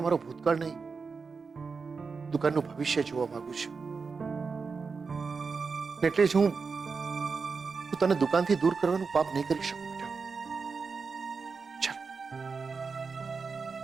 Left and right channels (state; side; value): quieter; left; 4.9 dB